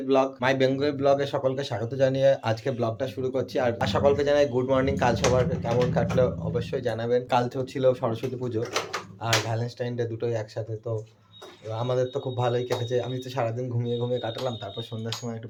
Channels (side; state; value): both; identical; correlation 1.00